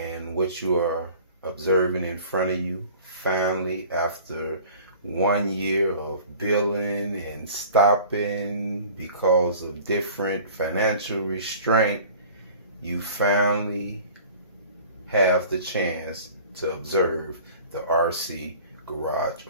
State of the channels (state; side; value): inverted; both; correlation -0.45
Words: what you are observing in front of you, finally, after 1 year of billing and stopping because of different financial restraint, you finally have the chance to observe the RC Garage